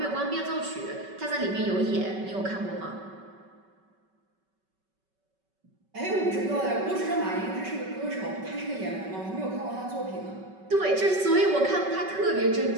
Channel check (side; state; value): left; late; 5.3 ms